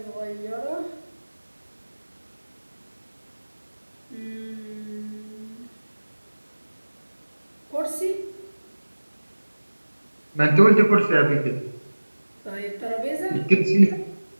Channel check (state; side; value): inverted; both; correlation -1.00